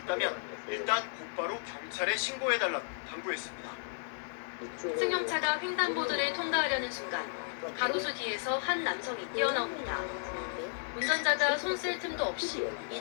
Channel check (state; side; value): silent; right; digital silence